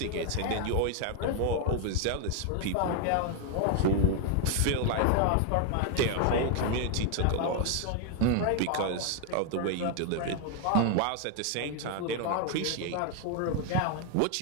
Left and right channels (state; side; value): different; both; correlation 0.00